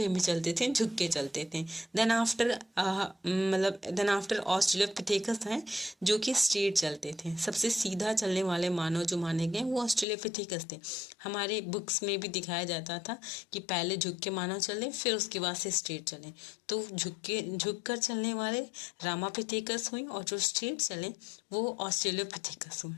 में चलते थे, झुक के चलते थे। देन आफ्टर ऑस्ट्रेलोपिथेकस हैं जो कि स्ट्रेट चलते थे। सबसे सीधा चलने वाले मानव जो माने गए वो ऑस्ट्रेलोपिथेकस थे। हमारे बुक्स में भी दिखाया जाता था कि पहले झुक के मानव चले, फिर उसके बाद से स्ट्रेट चले। तो झुक कर चलने वाले रामापिथेकस हुए और जो स्ट्रेट चले वो ऑस्ट्रेलोपिथेकस हुए।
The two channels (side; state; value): right; drops out; at 10.1 s